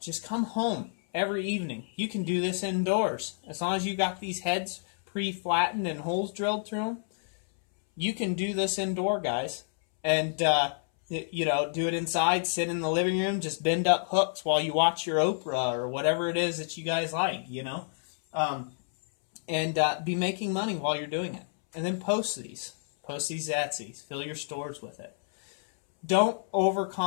come home every evening. You can do this indoors. As long as you got these heads pre-flattened and holes drilled through them, you can do this indoor, guys. And, you know, do it inside, sit in the living room, just bend up hooks while you watch your Oprah or whatever it is that you guys like, you know. And be making money while you're doing it. And then post these. Post these Etsy's. Fill your stores with it. Don't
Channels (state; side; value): silent; right; 59 dB below the other